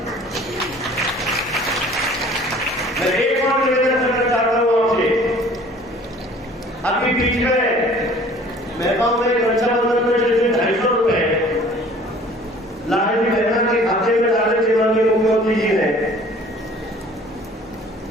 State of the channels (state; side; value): normal; both; correlation 0.51